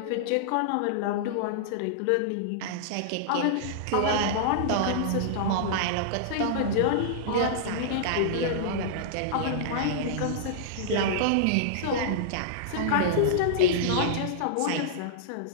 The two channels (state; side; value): different; both; correlation -0.02